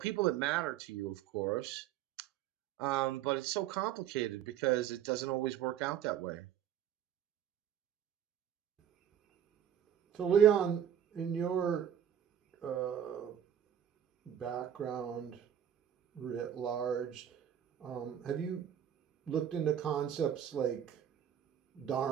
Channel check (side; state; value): left; quieter; 9.7 dB